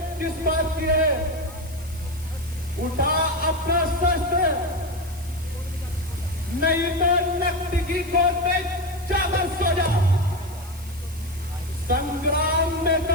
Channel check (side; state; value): left; noise; hiss, 22 dB below the sound